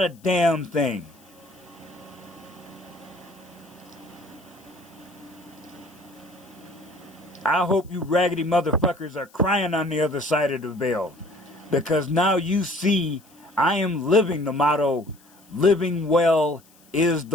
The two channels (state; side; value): noise; left; hiss, 29 dB below the sound